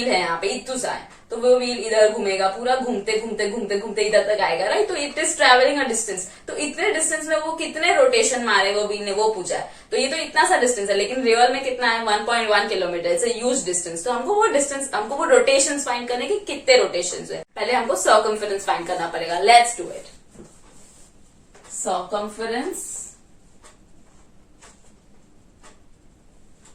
है यहाँ पे इतना सा है, तो वो व्हील इधर घूमेगा, पूरा घूमते घूमते घूमते घूमते इधर तक आएगा, राइट। तो it is travelling a distance, तो इतने डिस्टेंस में वो कितने रोटेशन मारे वो व्हील ने, वो पूछा है। तो ये तो इतना सा डिस्टेंस है, लेकिन रियल में कितना है, 1.1 kilometre. It's a huge distance. तो हमको वो डिस्टेंस, हमको वो रोटेशन फाइंड करने की कितने रोटेशन है, पहले हमको सर्कमफेरेंस फाइंड करना पड़ेगा। Let's do it. Circumference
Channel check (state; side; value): identical; both; correlation 1.00